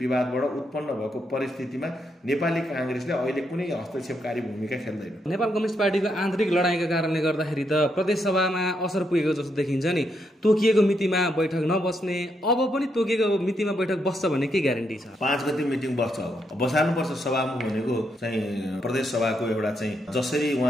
उत्पन्न भएको परिस्थितिमा नेपाली काङ्ग्रेसले अहिले कुनै हस्तक्षेपकारी भूमिका खेल्दैन। नेपाल कम्युनिस्ट पार्टीको आन्तरिक लडाइँका कारणले गर्दाखेरि त प्रदेश सभामा असर पुगेको जस्तो देखिन्छ नि। तोकिएको मितिमा बैठक नबस्ने, अब पनि तोकिएको मितिमा बैठक बस्छ भन्ने के ग्यारेन्टी छ? 5 गते मिटिङ बस्छ। अब बसाल्नुपर्छ। सभामुख भनेको चाहिँ प्रदेश सभाको एउटा चाहिँ जसरी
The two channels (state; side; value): normal; both; correlation 0.79